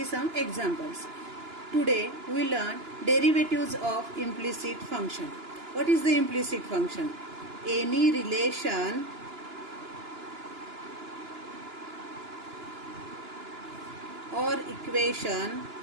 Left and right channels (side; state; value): left; late; 2.9 ms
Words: some examples. Today we learn derivatives of implicit function. What is the implicit function? Any relation or equation